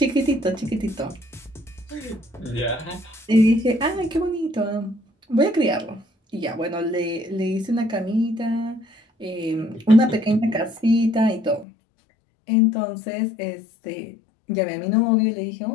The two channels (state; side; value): drops out; right; at 11.7 s